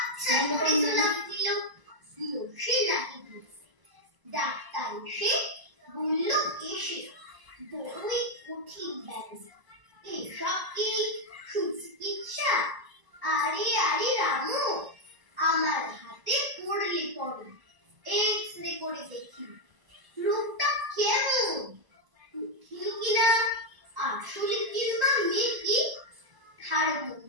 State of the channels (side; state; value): left; late; 1.0 ms